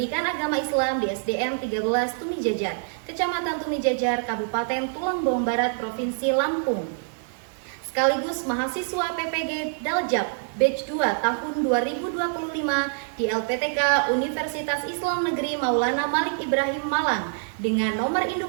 agama Islam di SDN 13 Tumijajar, Kecamatan Tumijajar, Kabupaten Tulangbong Barat, Provinsi Lampung, sekaligus mahasiswa PPG Daljab Batch 2 tahun 2025 di LPTK Universitas Islam Negeri Maulana Malik Ibrahim Malang dengan nomor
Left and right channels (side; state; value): left; silent; digital silence